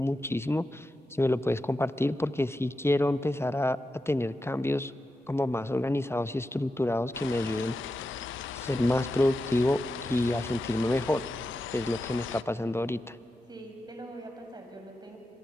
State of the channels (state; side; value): normal; both; correlation 0.89